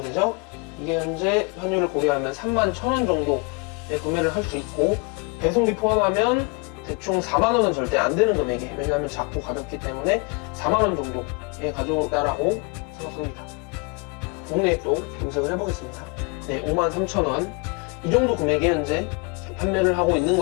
되죠? 이게 현재 환율을 고려하면 31,000원 정도에 구매를 할 수 있고, 배송비 포함하면 대충 4만원은 절대 안 되는 금액이에요. 왜냐하면 작고 가볍기 때문에 4만원 정도에 가져온다라고 생각합니다. 국내에 또 검색을 해보겠습니다. 네, 53,000원. 이 정도 금액에 현재 판매를 하고 있는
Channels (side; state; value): right; quieter; 31.2 dB